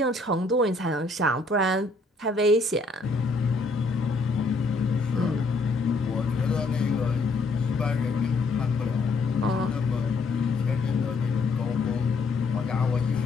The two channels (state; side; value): quieter; right; 3.4 dB